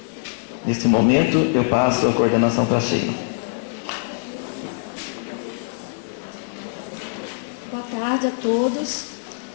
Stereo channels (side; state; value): right; silent; 63 dB below the other